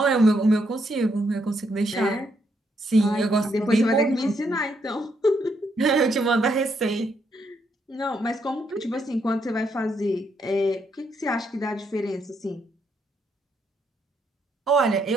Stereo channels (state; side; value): normal; both; correlation 0.76